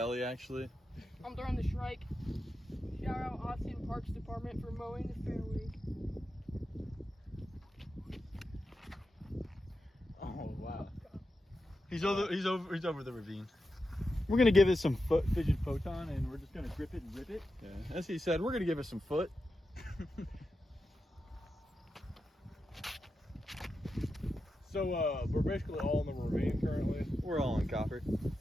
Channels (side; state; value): both; normal; correlation 0.89